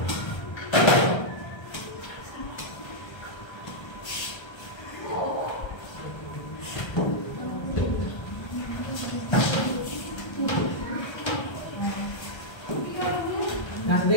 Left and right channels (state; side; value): late; right; 1.3 ms